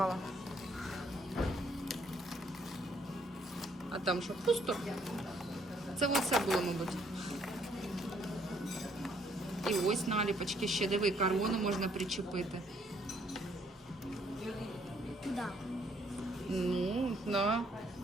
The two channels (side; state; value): both; normal; correlation 0.67